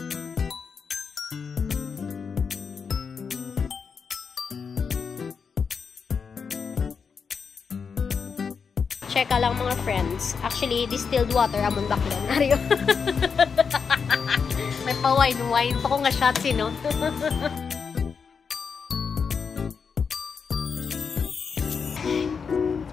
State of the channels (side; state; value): right; quieter; 5.9 dB